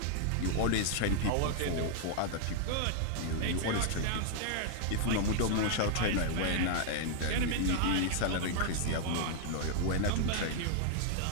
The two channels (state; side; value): different; both; correlation 0.00